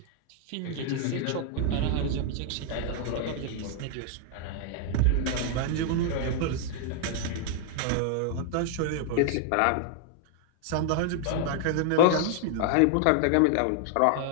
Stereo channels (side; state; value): both; different; correlation 0.00